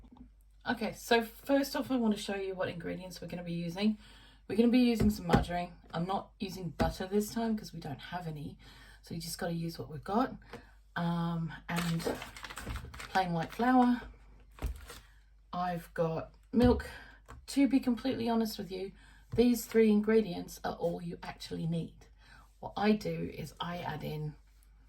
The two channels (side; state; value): both; identical; correlation 1.00